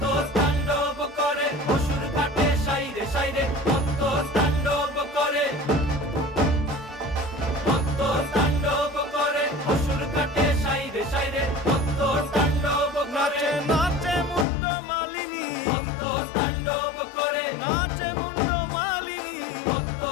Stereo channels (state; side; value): drops out; right; at 14.5 s